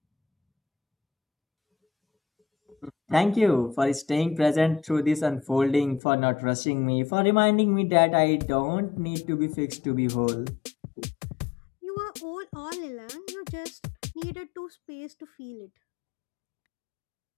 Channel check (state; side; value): drops out; right; at 6.0 s